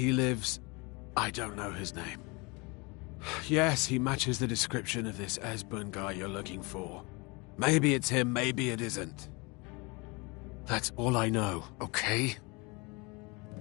lives. I don't know his name. Yes, he matches the description of this Esbern guy you're looking for. Maybe it's him, maybe it isn't. That's all I know, okay?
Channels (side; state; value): right; quieter; 27.7 dB